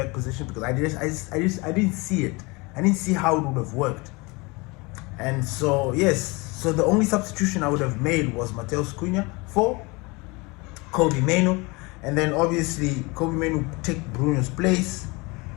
position because I didn't see it. I didn't see how it would have worked. And so, yes, so the only substitution I would have made was Matheus Cunha for Kobe Mainoo. And then obviously Kobe Mainoo would take Bruno's place.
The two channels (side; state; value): right; quieter; 26.1 dB